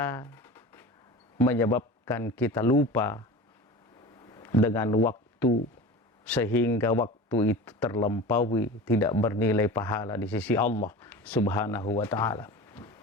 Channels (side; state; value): both; normal; correlation 0.33